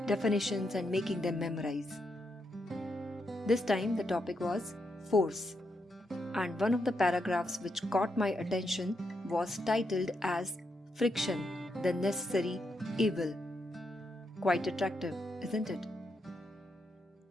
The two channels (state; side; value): normal; both; correlation 0.82